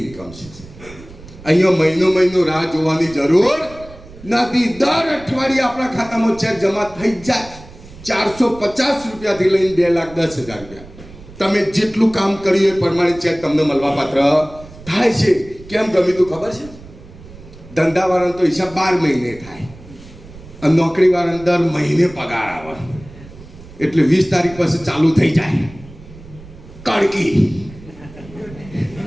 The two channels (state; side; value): noise; right; rumble, 19 dB below the sound